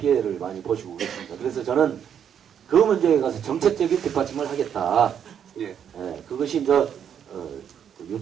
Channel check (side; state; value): left; quieter; 8.5 dB